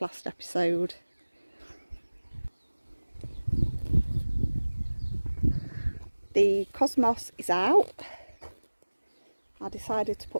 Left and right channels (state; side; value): inverted; both; correlation -1.00